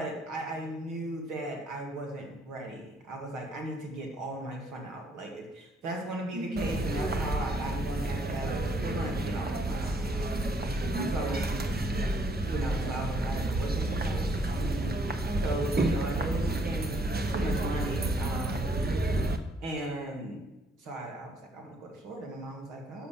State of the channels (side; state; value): both; normal; correlation 0.67